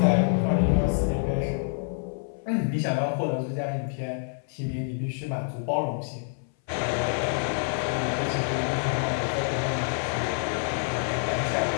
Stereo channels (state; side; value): silent; right; 58 dB below the other